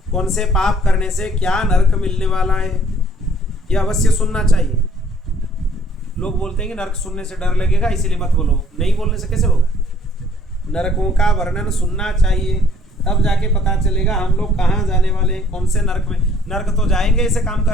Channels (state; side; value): normal; both; correlation 0.59